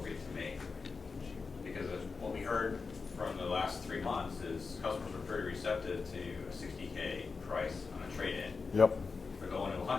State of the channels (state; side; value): quieter; right; 4.7 dB